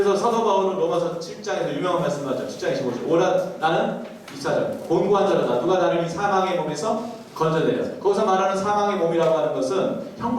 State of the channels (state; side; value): identical; both; correlation 1.00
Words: 사도 바울은 로마서 7장에서 유명한 말씀을 하죠. 7장 25절. 오라 나는 24절. 곤고한 자로다. 누가 나를 이 사망의 몸에서 건져내려. 거기서 말하는 사망의 몸이라고 하는 것은